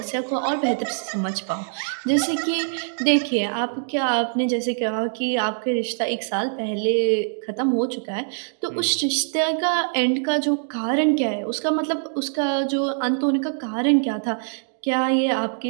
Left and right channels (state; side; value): silent; left; digital silence